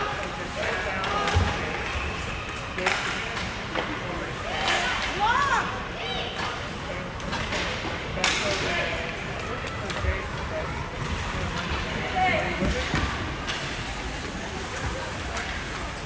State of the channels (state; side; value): identical; both; correlation 1.00